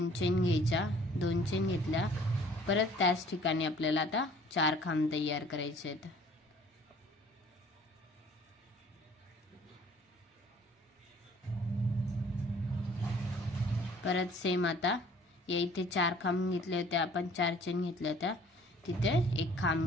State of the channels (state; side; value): normal; both; correlation 0.54